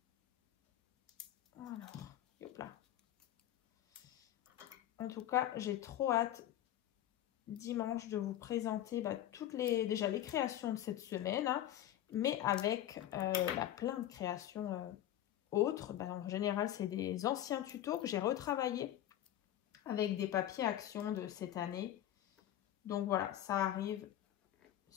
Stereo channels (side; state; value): right; quieter; 12.3 dB